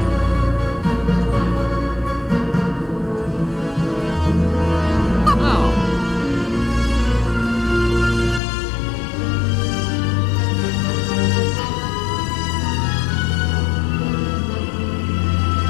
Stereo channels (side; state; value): right; drops out; at 8.4 s